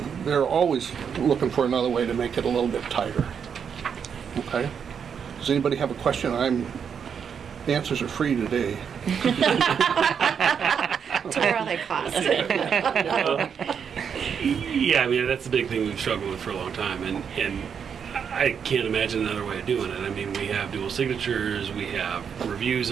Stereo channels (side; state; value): left; quieter; 7.2 dB